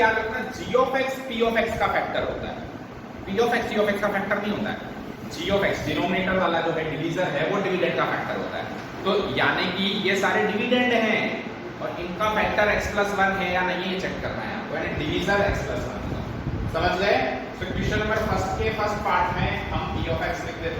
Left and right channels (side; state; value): both; identical; correlation 1.00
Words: रखना g of x p of x का फैक्टर होता है, p of x g of x का फैक्टर नहीं होता है। g ऑफ x डिनोमिनेटर वाला जो है डिवीजर है, वो डिविडेंड का फैक्टर होता है। तो यानी कि ये सारे डिविडेंड हैं और इनका फैक्टर x प्लस 1 है या नहीं, ये चेक करना है आपको, यानी डिवीजर x प्लस 1 का। समझ गए? तो क्वेश्चन नंबर फर्स्ट पार्ट में हम p ऑफ x लिख देते